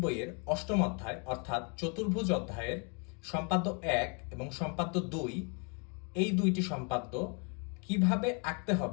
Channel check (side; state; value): right; quieter; 36.2 dB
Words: বইয়ের অষ্টম অধ্যায় অর্থাৎ চতুর্ভুজ অধ্যায়ের সম্পাদ্য 1 এবং সম্পাদ্য 2 এই দুইটি সম্পাদ্য কিভাবে আঁকতে